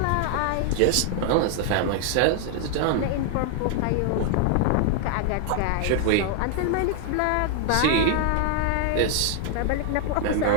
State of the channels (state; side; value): different; both; correlation 0.00